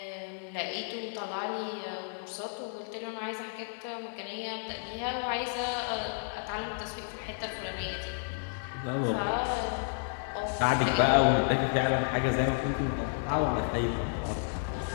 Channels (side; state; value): right; silent; digital silence